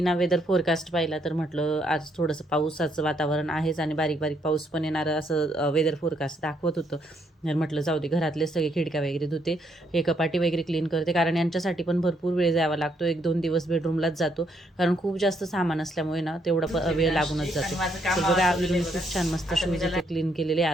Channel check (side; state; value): both; normal; correlation 0.73